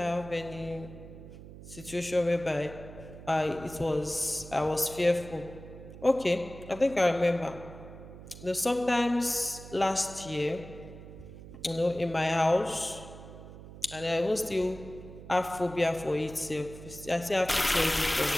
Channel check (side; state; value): right; noise; hum, 15 dB below the sound